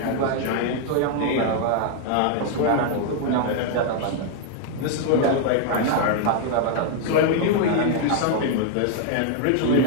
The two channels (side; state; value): both; different; correlation 0.00